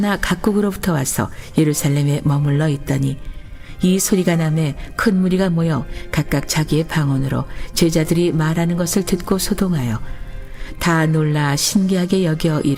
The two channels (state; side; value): identical; both; correlation 1.00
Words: 각국으로부터 와서 예루살렘에 머물러 있더니 이 소리가 나매 큰 무리가 모여 각각 자기의 방언으로 제자들이 말하는 것을 듣고 소동하여 다 놀라 신기하게 여겨